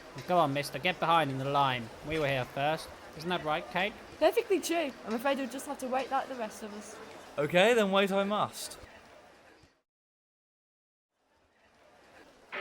Go on, mister, get behind in the line. We were here first. Isn't that right, Kate? Perfectly true. I'm afraid we'll just have to wait like the rest of us. Okay, then wait I must.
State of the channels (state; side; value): identical; both; correlation 1.00